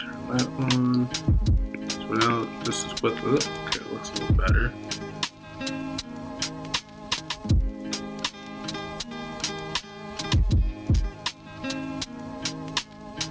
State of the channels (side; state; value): both; identical; correlation 1.00